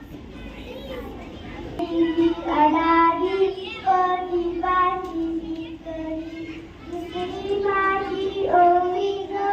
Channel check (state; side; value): identical; both; correlation 1.00